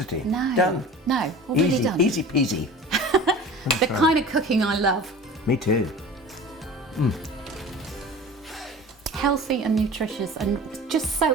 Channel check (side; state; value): both; normal; correlation 0.39